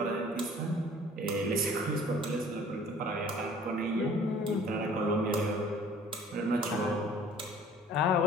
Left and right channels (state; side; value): normal; both; correlation 0.51